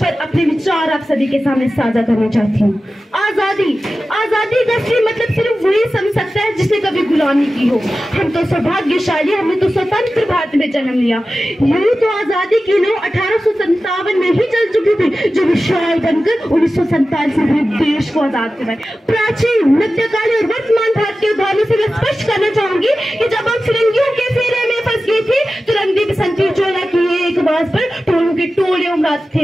अपने विचार आप सभी के सामने साझा करना चाहती हूँ। आजादी, आजादी का मतलब सिर्फ वही समझ सकता है जिसने कभी गुलामी की हो। हम तो सौभाग्यशाली, हमने तो स्वतंत्र भारत में जन्म लिया। यही तो आजादी की लो 1857 में ही चल चुकी थी, जो विशाल बनकर 1947 में देश को आजाद करवाए। प्राचीन, मध्यकालीन और वर्तमान भारत के उदाहरणों से मैं स्पष्ट करना चाहूंगी कि जब हम फिरंगियों के फेरे में फंस गए थे तो रंगदी बसंती चोला की एक आवाज पर टोलों के टोले उमड़ाते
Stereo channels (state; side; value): normal; both; correlation 0.94